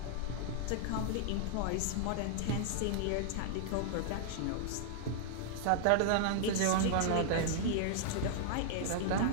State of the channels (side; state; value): both; different; correlation -0.01